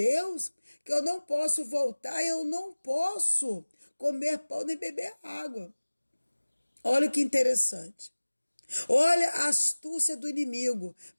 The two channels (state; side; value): inverted; both; correlation -1.00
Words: que eu não posso voltar, eu não posso comer pão nem beber água. Olha que interessante. Olha a astúcia do inimigo